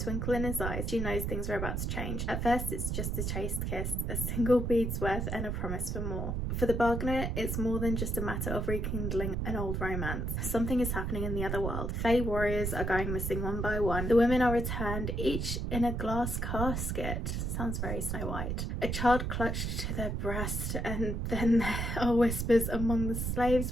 in his eyes, she knows things are about to change. At first it's just a chaste kiss, a single bead's worth and a promise for more. For the bargainer, it's more than just a matter of rekindling an old romance. Something is happening in the other world. Fae warriors are going missing one by one. The women are returned, each in a glass casket. Sounds very Snow White. A child clutched to their breast, and then there are whispers among the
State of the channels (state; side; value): noise; right; rumble, 1 dB below the sound